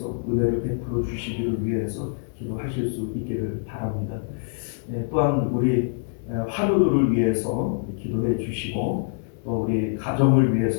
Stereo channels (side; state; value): right; silent; 62 dB below the other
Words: 은혜를 베풀어 주시기를 위해서 기도하실 수 있기를 바랍니다. 또한 우리 환우들을 위해서 기도해 주시고 또 우리 가정을